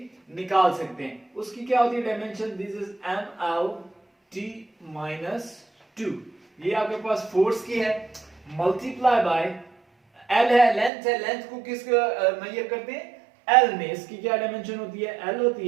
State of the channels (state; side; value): drops out; left; at 10.9 s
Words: निकाल सकते हैं। उसकी क्या होती है डायमेंशन, दिस इज mlt -2। ये आपके पास फोर्स की है, मल्टीप्लाई बाय l है, लेंथ है, लेंथ को किस मेजर करते हैं, l में, इसकी क्या डायमेंशन होती है, l